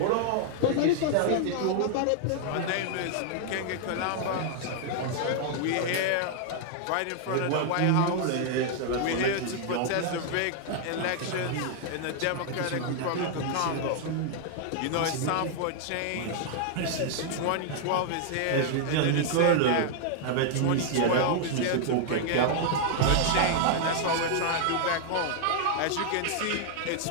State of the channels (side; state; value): both; different; correlation 0.00